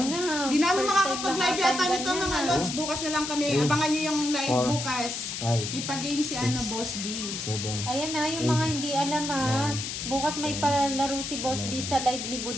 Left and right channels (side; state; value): left; noise; hiss, 5 dB below the sound